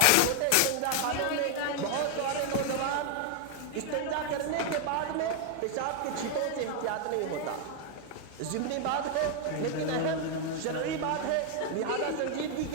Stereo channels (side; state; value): both; different; correlation 0.00